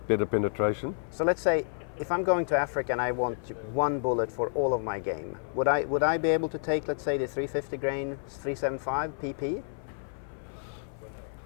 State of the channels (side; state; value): right; silent; 58 dB below the other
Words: better penetration. So let's say if I'm going to Africa and I want one bullet for all of my game, would I be able to take, let's say, the 350 grain 375 PP?